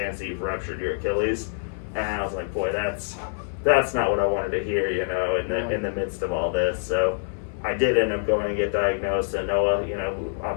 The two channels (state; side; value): silent; right; 61 dB below the other